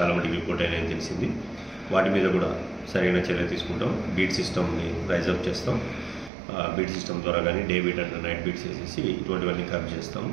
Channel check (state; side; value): drops out; left; at 6.3 s